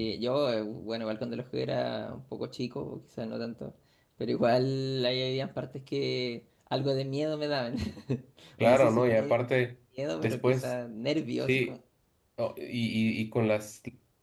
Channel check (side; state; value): both; identical; correlation 1.00